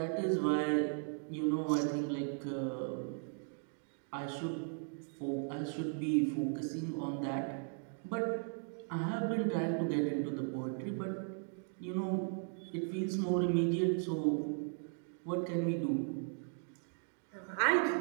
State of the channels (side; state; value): left; silent; 53 dB below the other